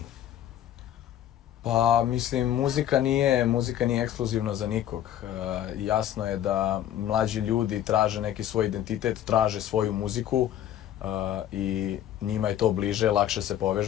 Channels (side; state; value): right; quieter; 11.4 dB